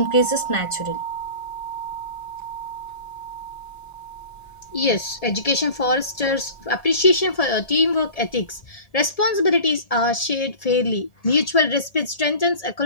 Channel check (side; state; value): right; late; 1.7 ms